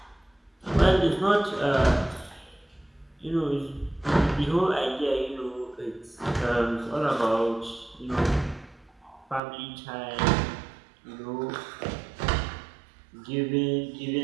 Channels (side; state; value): left; drops out; at 9.4 s